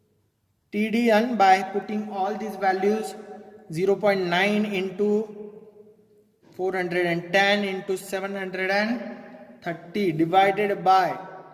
TDN by putting all these values 0.9 into 410 into 730 divided by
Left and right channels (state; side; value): identical; both; correlation 1.00